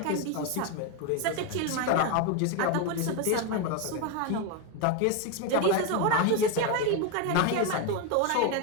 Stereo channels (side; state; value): both; different; correlation 0.02